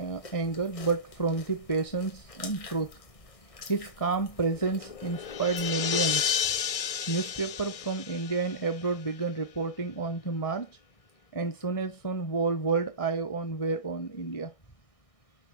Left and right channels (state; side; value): late; right; 1.6 ms